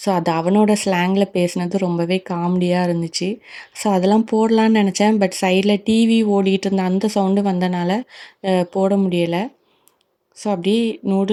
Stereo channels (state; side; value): identical; both; correlation 1.00